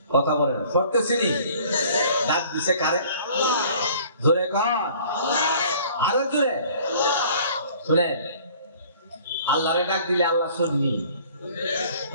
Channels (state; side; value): inverted; both; correlation -0.52